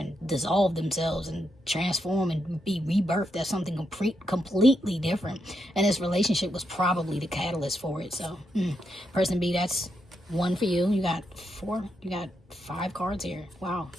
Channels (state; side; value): normal; both; correlation 0.81